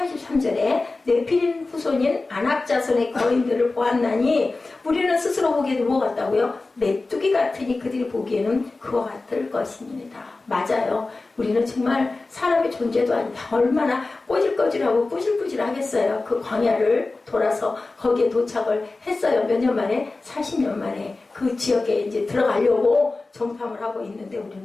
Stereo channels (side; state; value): right; quieter; 3.5 dB